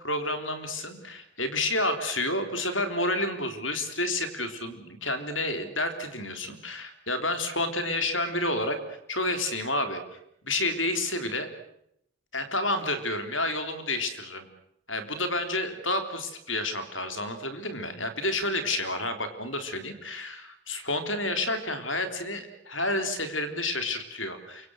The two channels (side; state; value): both; normal; correlation -0.10